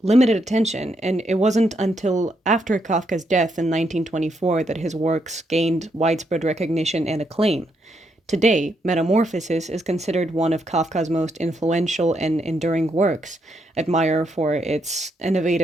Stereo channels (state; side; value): normal; both; correlation 0.78